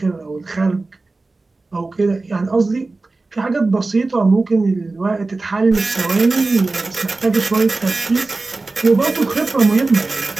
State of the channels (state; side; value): quieter; left; 3.4 dB